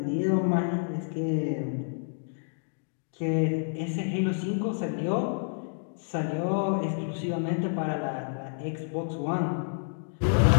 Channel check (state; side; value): silent; right; digital silence